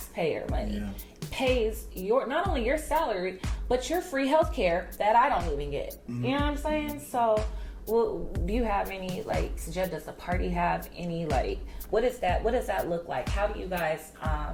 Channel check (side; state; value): both; identical; correlation 1.00